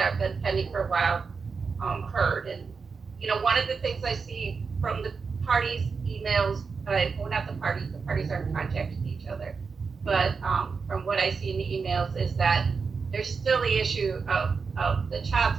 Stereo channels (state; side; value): quieter; left; 5.1 dB